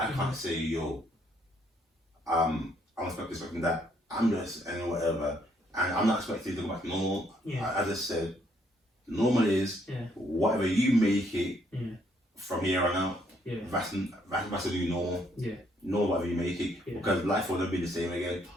can't say I'm expecting that. I'm just and whatever, and I'm not expecting to go back to normal. Yeah. As I said. Normal is whatever you make it from here on out. Yeah. That's the new normal. Yeah. Know whatever you make it because life will never be the same again.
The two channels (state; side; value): normal; both; correlation 0.69